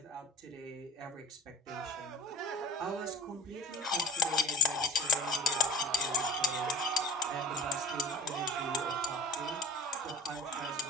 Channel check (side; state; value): both; normal; correlation 0.37